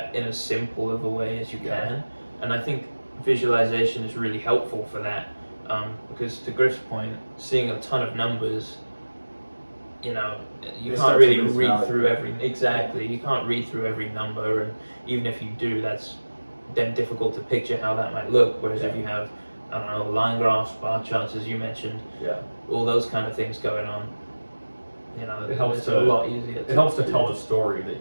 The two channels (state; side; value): inverted; both; correlation -1.00